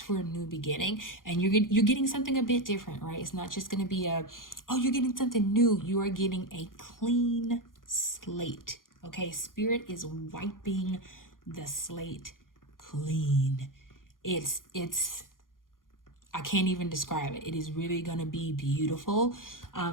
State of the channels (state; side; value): late; right; 0.90 ms